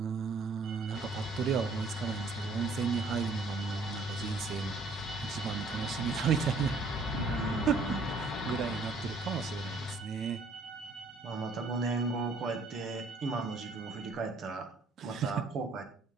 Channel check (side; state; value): left; quieter; 3.4 dB